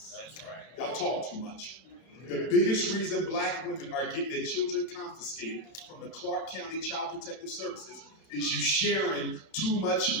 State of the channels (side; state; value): right; late; 31 ms